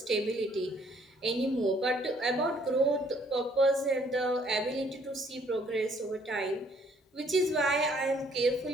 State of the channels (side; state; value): both; normal; correlation 0.63